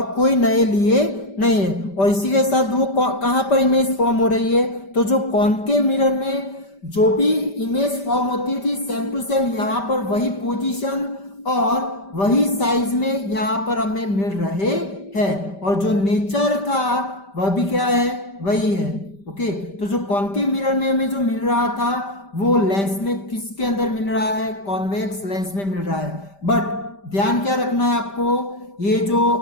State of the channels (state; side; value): late; right; 5.1 ms